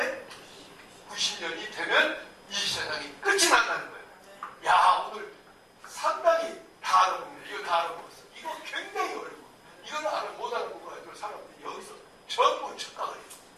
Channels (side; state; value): both; identical; correlation 1.00